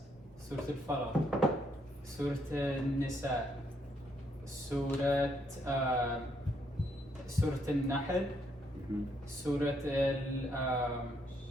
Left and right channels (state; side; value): normal; both; correlation 0.73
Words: سورة الفلق، سورة النساء، سورة سورة النحل، سورة